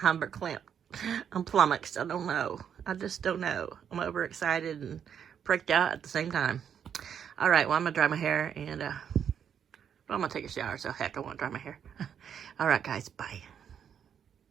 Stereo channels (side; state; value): left; quieter; 8.3 dB